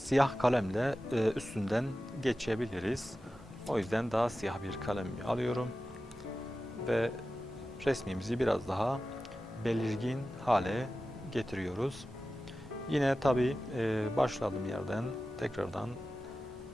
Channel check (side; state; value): both; normal; correlation 0.94